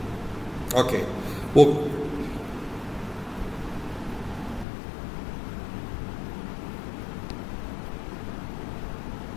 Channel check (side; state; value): right; drops out; at 4.7 s